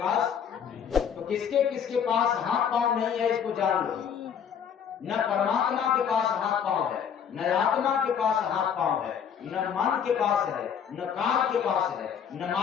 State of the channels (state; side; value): quieter; right; 7.8 dB